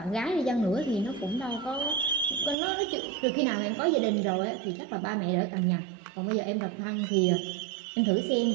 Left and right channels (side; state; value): left; drops out; at 2.6 s